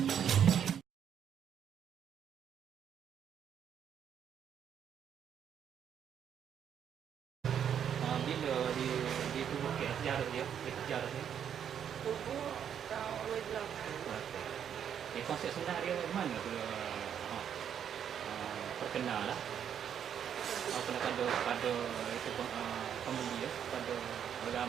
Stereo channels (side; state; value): left; quieter; 8.7 dB